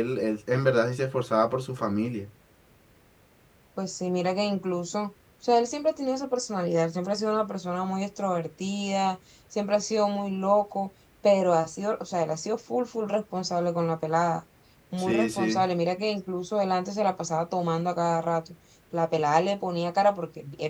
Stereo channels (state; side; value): identical; both; correlation 1.00